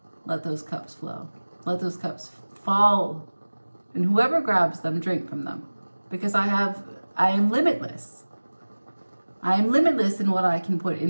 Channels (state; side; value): inverted; both; correlation -1.00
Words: Let those cups flow. Let those cups fall, and whoever grabs them, drink from them, because I am limitless. I am limitless in what I can put